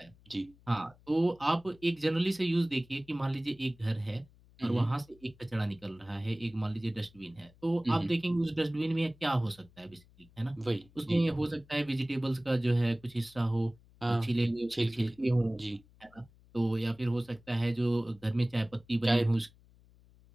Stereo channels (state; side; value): noise; left; hum, 27 dB below the sound